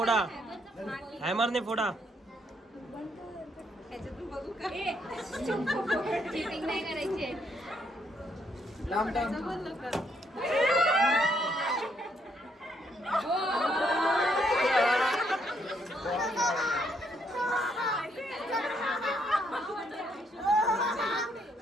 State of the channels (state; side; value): normal; both; correlation 0.72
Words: हॅमरने फोडा चिटिंग नाही करायची